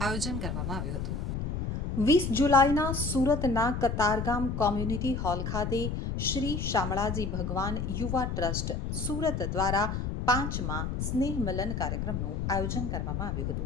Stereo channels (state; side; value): noise; left; rumble, 2 dB below the sound